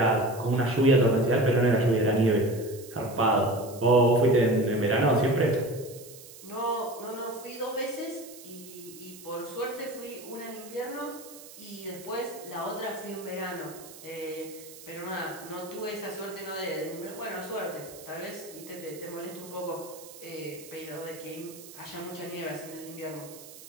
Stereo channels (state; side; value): noise; right; hiss, 17 dB below the sound